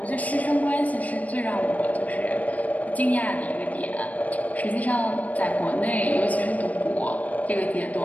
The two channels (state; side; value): late; right; 0.072 ms